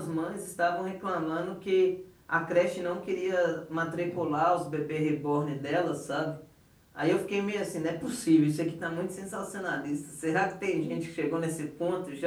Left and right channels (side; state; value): both; identical; correlation 1.00